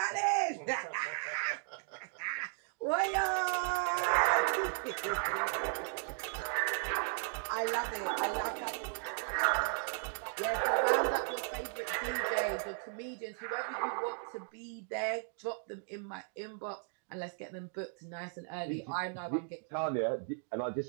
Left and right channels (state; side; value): silent; left; 54 dB below the other